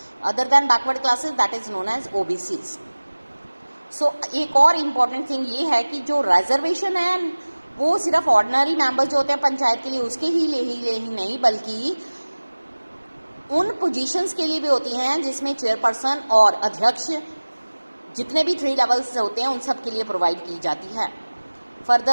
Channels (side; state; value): both; inverted; correlation -1.00